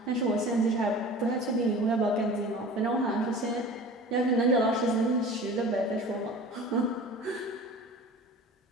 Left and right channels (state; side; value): normal; both; correlation 0.39